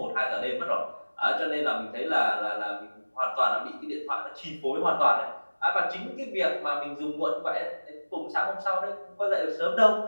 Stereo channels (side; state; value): both; inverted; correlation -1.00